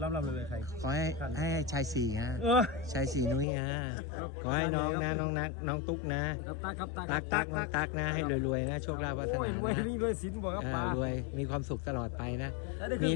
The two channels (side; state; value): right; drops out; at 3.5 s